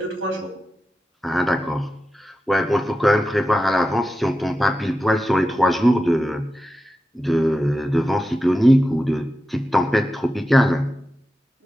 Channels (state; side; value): normal; both; correlation 0.91